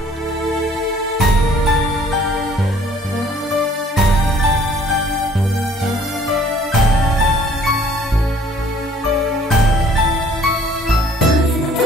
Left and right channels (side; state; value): both; normal; correlation 0.56